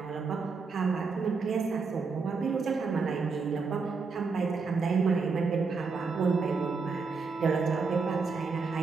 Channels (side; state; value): left; quieter; 4.7 dB